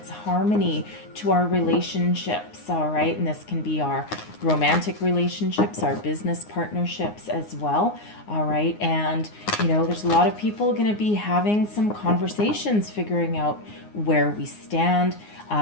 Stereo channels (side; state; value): right; late; 9.6 ms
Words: harmony to our relationships. All right, and this can be our romantic relationships, our business partnerships as well. All right, and there's a lot of people going to be having some conversations, figuring out where we stand,